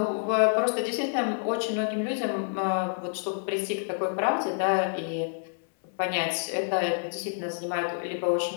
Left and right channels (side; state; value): right; silent; digital silence